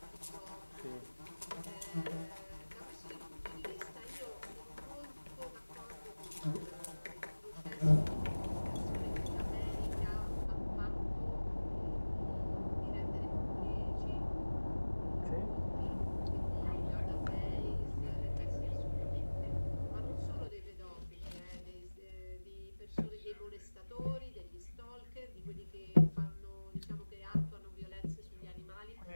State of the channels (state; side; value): inverted; both; correlation -1.00